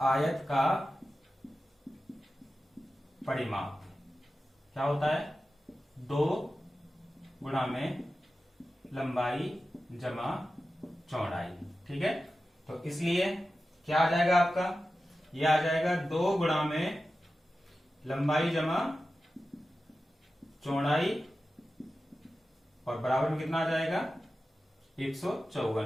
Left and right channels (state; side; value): normal; both; correlation 0.93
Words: आयत का परिमाप क्या होता है? 2 गुणा में लंबाई जमा चौड़ाई, ठीक है। तो इसलिए क्या आ जाएगा आपका? ये आ जाएगा 2 गुणा में लंबाई जमा चौड़ाई और बराबर में कितना आ जाएगा? 154